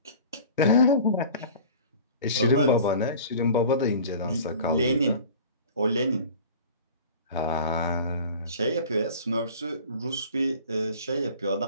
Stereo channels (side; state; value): both; inverted; correlation -0.42